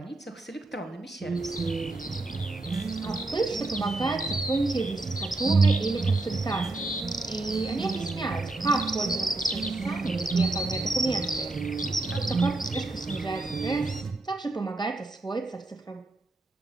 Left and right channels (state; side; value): quieter; left; 3.0 dB